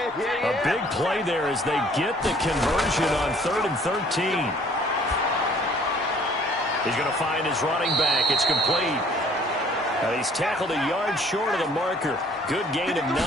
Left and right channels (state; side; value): normal; both; correlation 0.56